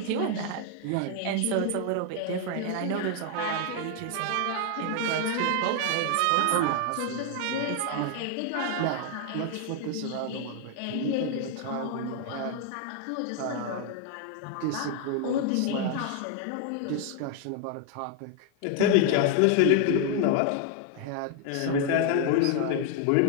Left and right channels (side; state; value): both; different; correlation 0.00